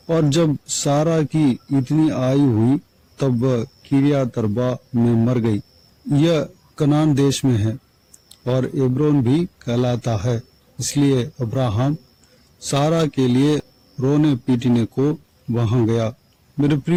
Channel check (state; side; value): identical; both; correlation 1.00